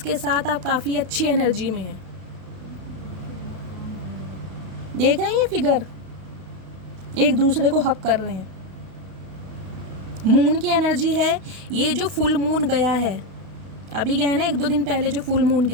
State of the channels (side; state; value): left; late; 32 ms